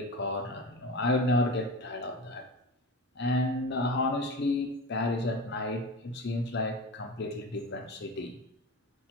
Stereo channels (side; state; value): both; normal; correlation 0.29